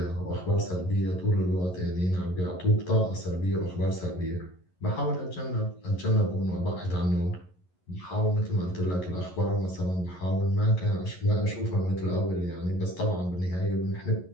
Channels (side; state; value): right; late; 11 ms